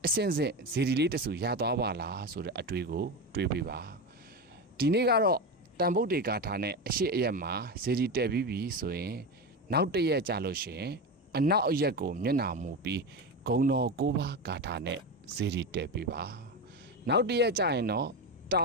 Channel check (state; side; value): normal; both; correlation 0.19